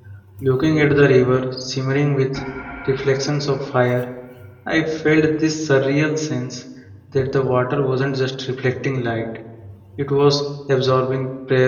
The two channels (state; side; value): identical; both; correlation 1.00